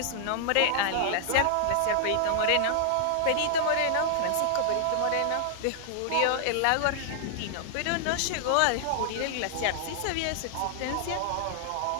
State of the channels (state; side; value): different; both; correlation -0.01